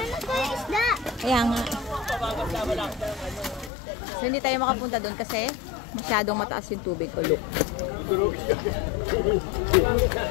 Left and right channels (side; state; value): right; drops out; at 3.7 s